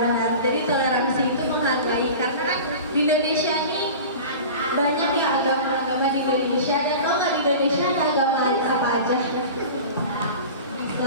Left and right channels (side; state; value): both; inverted; correlation -0.35